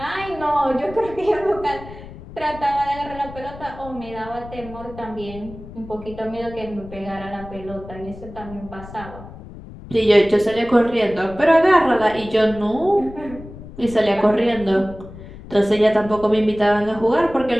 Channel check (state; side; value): noise; left; rumble, 15 dB below the sound